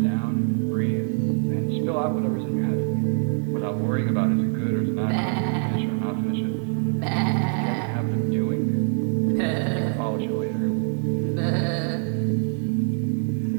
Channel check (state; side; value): silent; left; 62 dB below the other